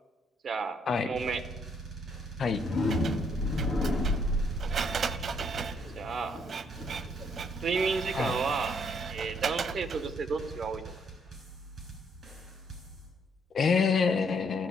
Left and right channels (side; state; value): both; normal; correlation 0.70